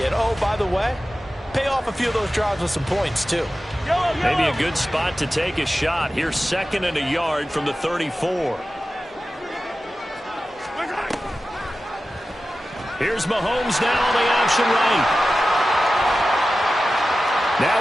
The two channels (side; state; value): both; normal; correlation 0.94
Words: And, oh, by the way, pay off a few of those drives with some points, too. Maybe a good spot to take a shot. Here's 2nd and a yard from the 34. Here's Mahomes now on the option right. Now